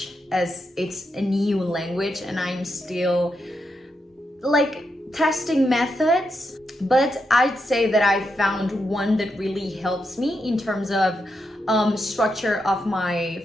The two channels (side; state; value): both; normal; correlation 0.84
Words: as it's a new language and I'm still like testing methods, but I'd say that I found one that really helps me in terms of structure of